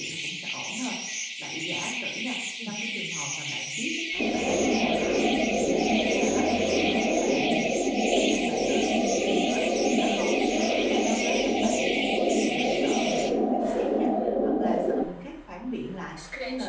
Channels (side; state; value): both; identical; correlation 1.00